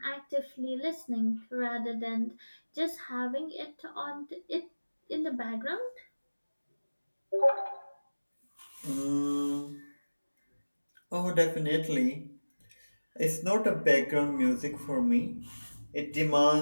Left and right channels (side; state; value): both; inverted; correlation -1.00